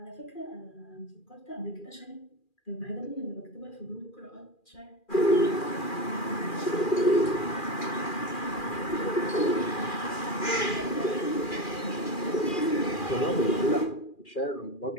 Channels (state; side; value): late; right; 2.4 ms